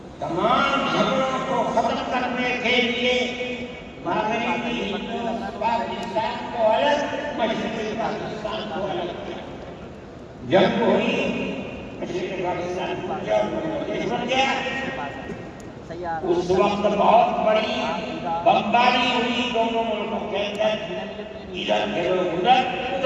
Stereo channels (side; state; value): both; identical; correlation 1.00